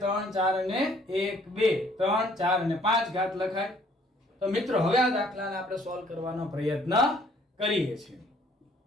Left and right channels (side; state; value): both; normal; correlation 0.61